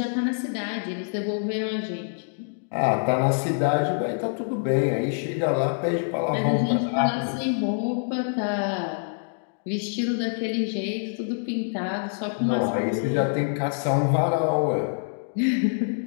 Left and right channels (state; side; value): silent; right; digital silence